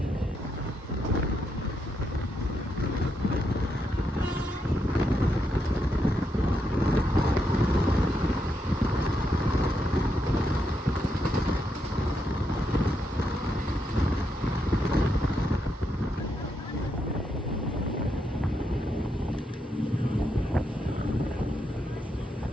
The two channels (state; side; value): normal; both; correlation 0.81